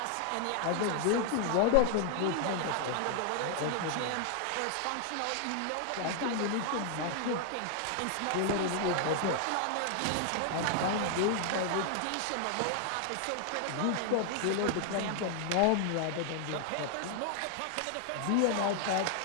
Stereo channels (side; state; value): both; different; correlation 0.00